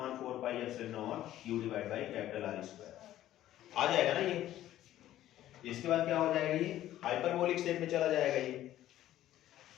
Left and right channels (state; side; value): quieter; right; 13.3 dB